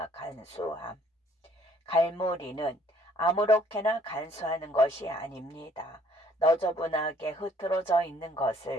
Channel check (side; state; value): both; normal; correlation 0.61